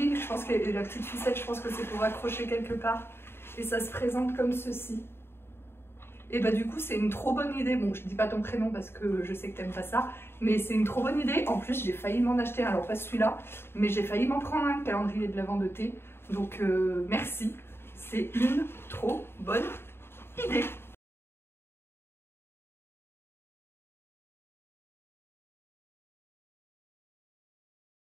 je pense que la petite ficelle, je pense que c'est pour accrocher quelque part. Et ça se présente comme ceci. Et bah du coup, c'est une trop bonne idée. Bon, je dis pas ton prénom parce que je sais que t'aimes pas ça. Mais c'est une trop bonne idée. En plus, j'ai failli m'en acheter un. Alors pas celui-là, mais j'ai failli m'en prendre un calendrier de l'Avent de thé. Donc merci. C'est une trop bonne idée.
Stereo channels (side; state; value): right; late; 0.11 ms